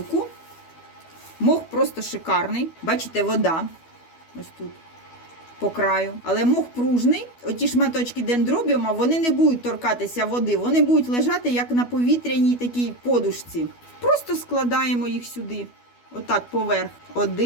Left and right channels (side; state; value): right; late; 12 ms